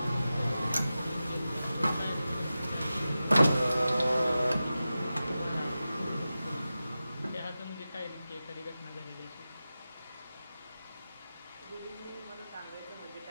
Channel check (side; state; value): both; inverted; correlation -0.94